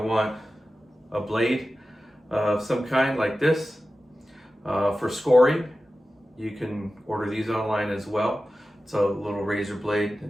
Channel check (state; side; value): normal; both; correlation 0.94